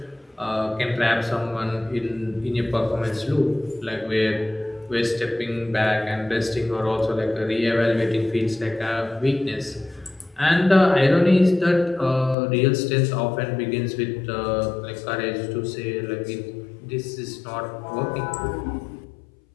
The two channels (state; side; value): drops out; right; at 12.4 s